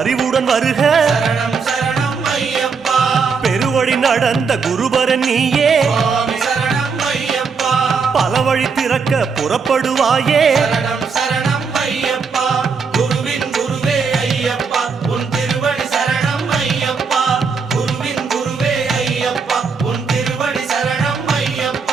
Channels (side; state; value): left; quieter; 5.4 dB